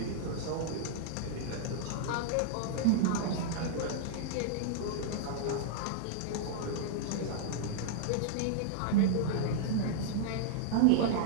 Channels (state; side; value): different; both; correlation -0.01